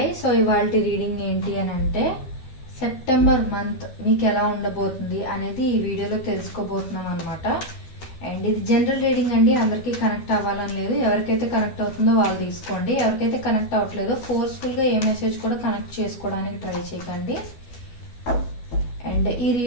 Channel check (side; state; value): right; late; 12 ms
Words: సో ఇవాళ రీడింగ్ ఏంటి అని అంటే సెప్టెంబర్ మంత్ మీకు ఎలా ఉండబోతుంది అనేది ఈ వీడియోలో తెలుసుకోబోతున్నాం అనమాట. అండ్ ఇది జనరల్ రీడింగ్ అండి, అందరికీ కనెక్ట్ అవ్వాలని లేదు. ఎవరికైతే కనెక్ట్ అవుతుందో వాళ్ళు తీసుకోండి. ఎవరికైతే కనెక్ట్ అవ్వట్లేదో ఫోర్స్ఫుల్గా ఏ మెసేజ్ కూడా కనెక్ట్ చేసుకోవడానికి ట్రై చేయకండి. అండ్